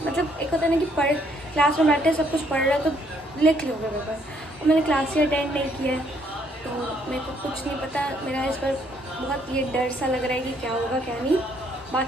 मतलब एक होता है ना कि पढ़ क्लास में बैठे सब कुछ पढ़ रहा है तो लिख लोगे पेपर, और मैंने क्लास ही अटेंड नहीं किया है तो मेरे को कुछ नहीं पता। मेरा इस पर बहुत ये डर सा लग रहा है कि क्या होगा क्या नहीं।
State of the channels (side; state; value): both; normal; correlation 0.68